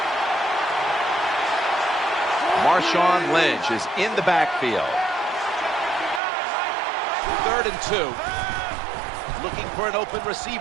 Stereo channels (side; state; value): left; drops out; at 6.2 s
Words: Marshawn Lynch is in the backfield. 3rd and 2. Looking for an open